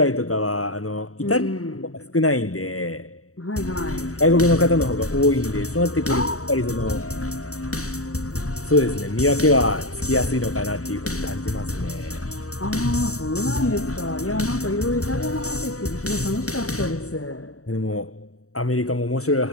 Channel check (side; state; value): right; late; 0.65 ms